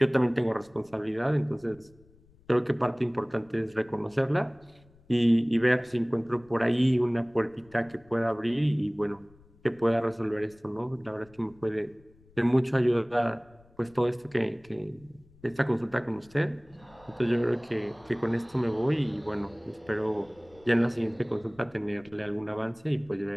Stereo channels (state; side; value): noise; left; rumble, 28 dB below the sound